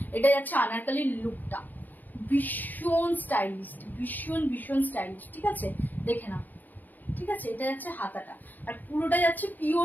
এটা যাচ্ছে আনারকলির লুকটা, ভীষণ স্টাইলিশ, ভীষণ স্টাইলিশ, ঠিক আছে, দেখে নাও, ঠিক আছে। এটা যাচ্ছে হাতাটা, আর পুরোটা যাচ্ছে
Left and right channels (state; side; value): late; right; 0.086 ms